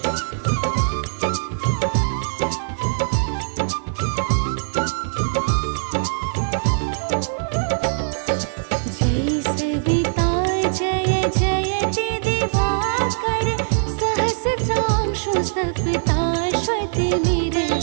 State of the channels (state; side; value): silent; left; 56 dB below the other